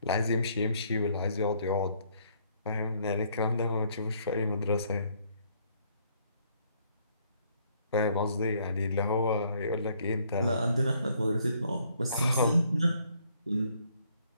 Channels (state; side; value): inverted; both; correlation -0.67